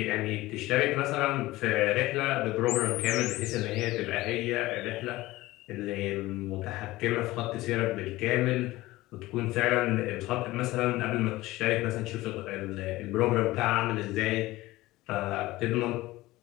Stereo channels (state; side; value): quieter; right; 18.4 dB